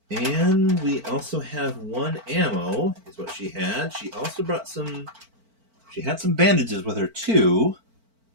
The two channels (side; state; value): left; late; 4.5 ms